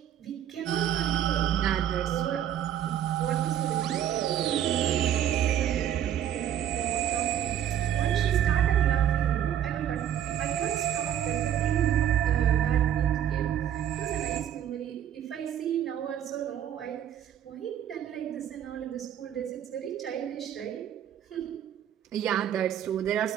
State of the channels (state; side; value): quieter; left; 10.5 dB